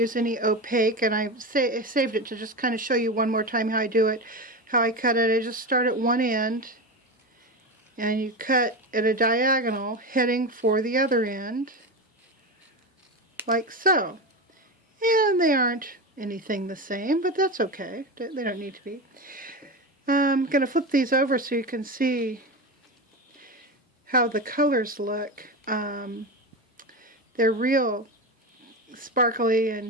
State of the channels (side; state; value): both; normal; correlation 0.21